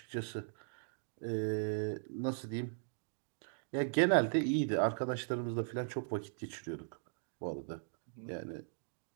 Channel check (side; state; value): left; silent; digital silence